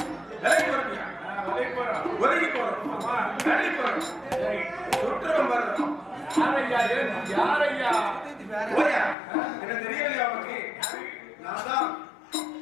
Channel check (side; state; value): right; drops out; at 9.2 s